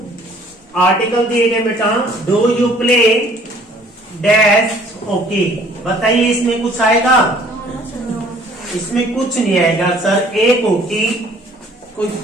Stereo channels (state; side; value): normal; both; correlation 0.56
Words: आर्टिकल दिए गए बेटा, do you play dash okay. बताइए इसमें कुछ आएगा, इसमें कुछ नहीं आएगा सर। एक हॉकी,